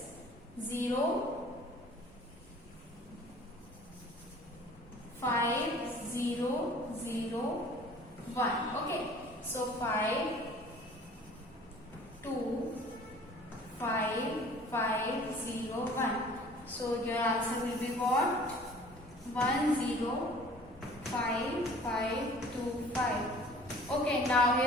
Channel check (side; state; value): both; normal; correlation 0.49